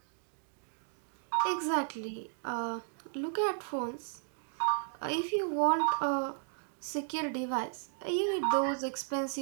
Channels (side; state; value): left; silent; digital silence